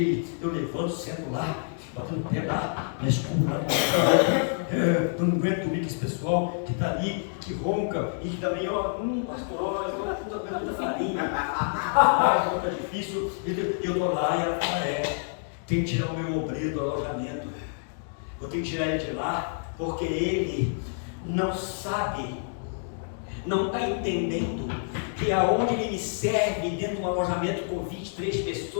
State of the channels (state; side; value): silent; right; digital silence